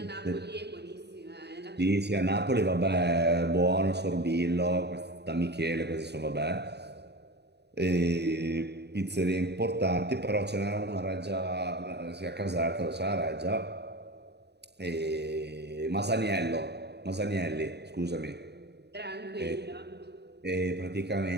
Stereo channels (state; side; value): late; left; 0.49 ms